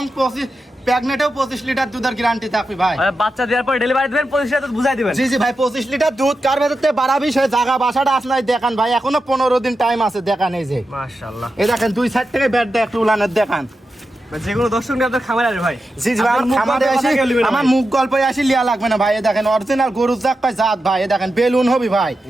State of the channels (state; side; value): normal; both; correlation 0.90